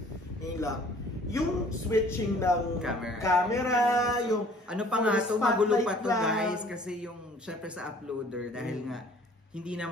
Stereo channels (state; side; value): normal; both; correlation 0.53